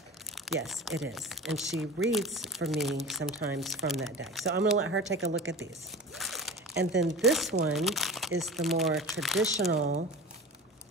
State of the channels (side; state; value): both; normal; correlation 0.33